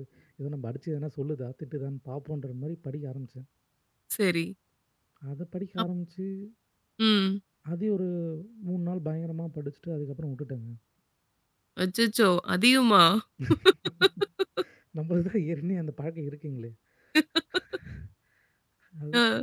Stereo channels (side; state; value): both; identical; correlation 1.00